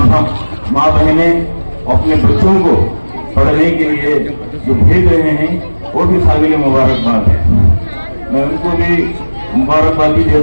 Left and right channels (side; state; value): both; inverted; correlation -1.00